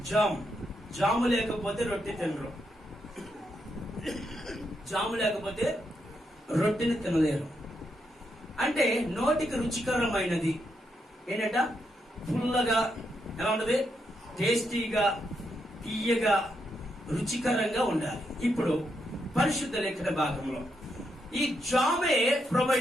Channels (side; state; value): both; normal; correlation 0.81